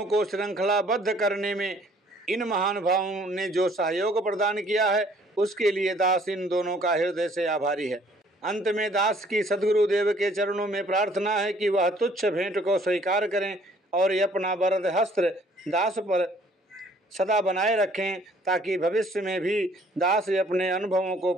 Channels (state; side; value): normal; both; correlation 0.59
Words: को श्रृंखलाबद्ध करने में इन महानुभावों ने जो सहयोग प्रदान किया है उसके लिए दास इन दोनों का हृदय से आभारी है। अंत में दास की सद्गुरुदेव के चरणों में प्रार्थना है कि वह तुच्छ भेंट को स्वीकार करें और अपना वरद हस्त्र दास पर सदा बनाए रखें, ताकि भविष्य में भी दास अपने अनुभवों को